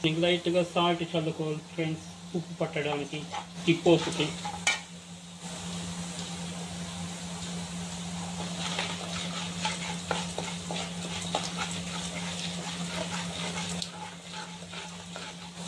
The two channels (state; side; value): identical; both; correlation 1.00